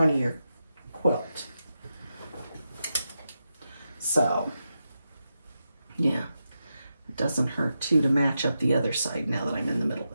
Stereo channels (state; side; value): inverted; both; correlation -0.88